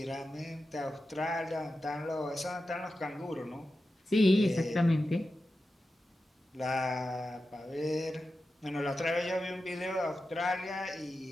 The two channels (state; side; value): normal; both; correlation 0.91